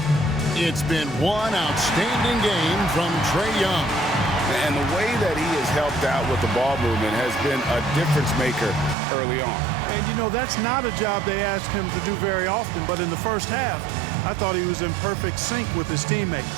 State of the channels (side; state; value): left; drops out; at 9.0 s